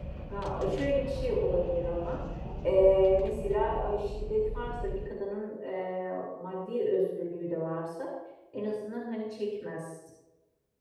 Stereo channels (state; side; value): identical; both; correlation 1.00